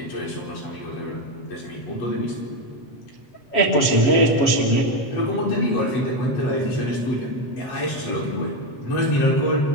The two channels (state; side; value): late; right; 7.4 ms